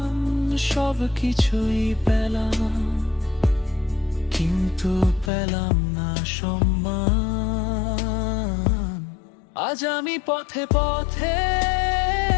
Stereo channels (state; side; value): drops out; right; at 5.3 s